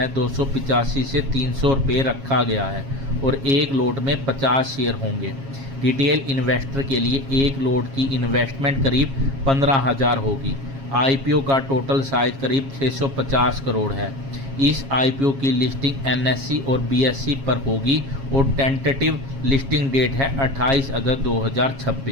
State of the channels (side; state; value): left; late; 7.3 ms